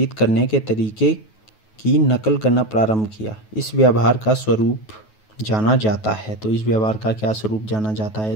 करने के तरीके की नकल करना प्रारंभ किया। इस व्यवहार का स्वरूप जाना जाता है। तो इस व्यवहार का क्या स्वरूप जाना जाता है?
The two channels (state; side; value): late; right; 9.3 ms